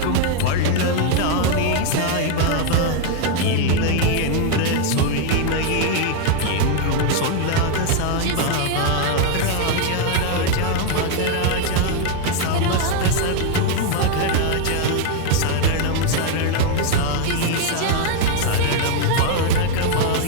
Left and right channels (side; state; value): both; different; correlation 0.00